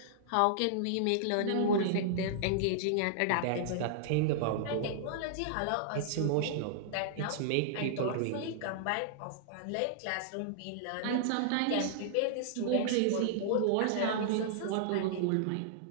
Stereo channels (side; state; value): both; different; correlation -0.01